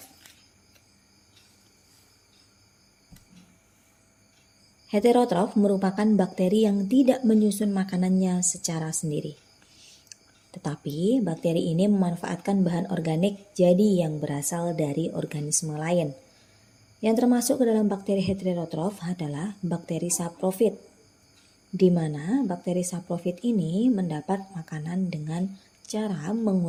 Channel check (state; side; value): identical; both; correlation 1.00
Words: Heterotrof merupakan bakteri yang tidak menyusun makanannya secara sendiri. Tetapi bakteri ini memanfaatkan bahan organik jadi yang berasal dari organisme lain. Yang termasuk ke dalam bakteri heterotrof adalah bakteri saprofit, di mana bakteri saprofit ini mendapat makanan dengan cara